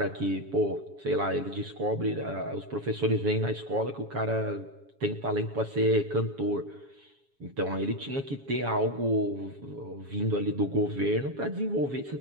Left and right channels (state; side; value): late; left; 7.2 ms